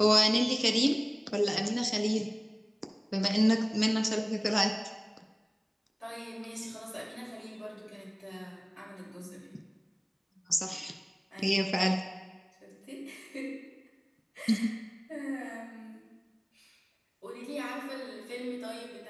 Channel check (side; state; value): both; identical; correlation 1.00